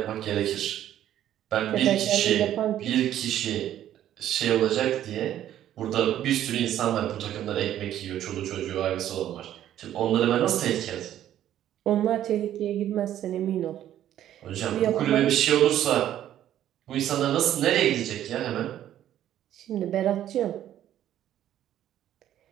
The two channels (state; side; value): quieter; left; 11.7 dB